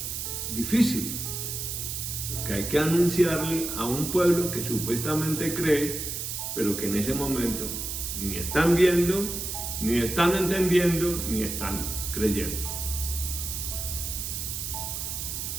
difícil, que hay que anunciarle a un pueblo que supuestamente cree, pero que en ese momento ni están viendo, ni están entendiendo, ni están creyendo.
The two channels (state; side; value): noise; right; hiss, 4 dB below the sound